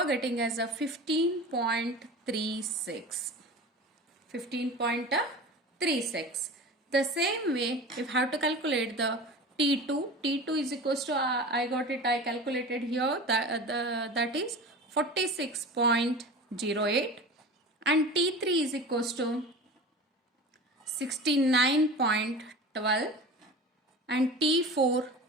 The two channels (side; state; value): both; normal; correlation 0.34